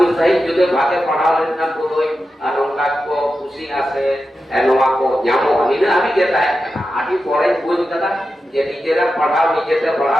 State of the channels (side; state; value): both; normal; correlation 0.91